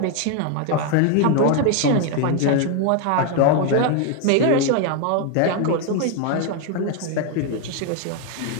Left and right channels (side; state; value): both; different; correlation 0.01